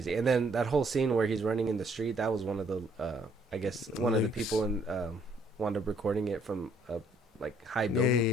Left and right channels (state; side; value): normal; both; correlation 0.66